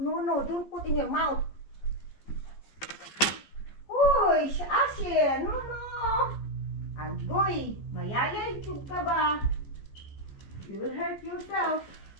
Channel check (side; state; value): right; late; 14 ms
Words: No, don't put in your mouth. Uy, Asher, no. Agoy, mayayay tug ka ba? You will hurt yourself.